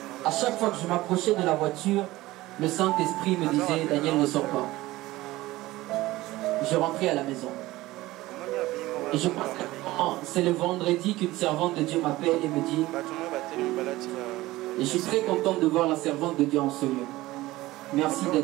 à chaque fois que je m'approchais de la voiture, le Saint-Esprit me disait, Daniel, ne sors pas. Je rentrais à la maison. Et je pense que c'est le vendredi qu'une servante de Dieu m'appelle et me dit, et je suis très contente de voir la servante de Dieu en ce lieu. Merci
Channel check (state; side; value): quieter; left; 18.0 dB